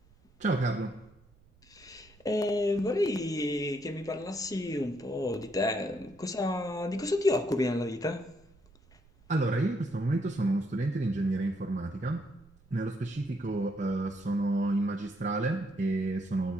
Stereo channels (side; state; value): right; noise; rumble, 28 dB below the sound